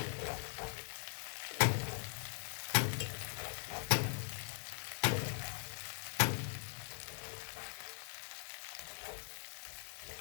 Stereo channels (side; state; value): right; silent; 50 dB below the other